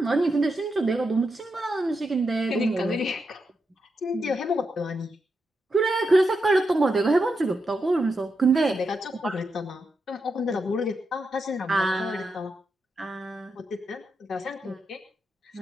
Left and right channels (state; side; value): normal; both; correlation 0.85